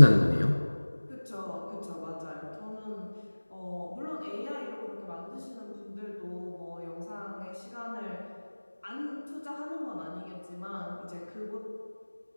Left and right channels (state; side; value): inverted; both; correlation -1.00